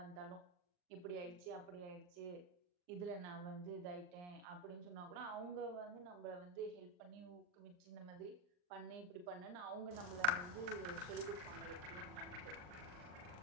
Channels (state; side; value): late; left; 39 ms